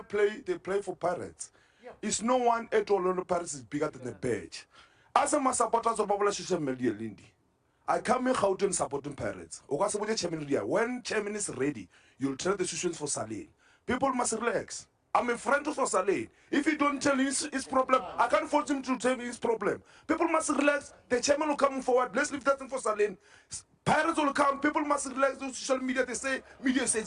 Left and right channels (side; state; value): both; identical; correlation 1.00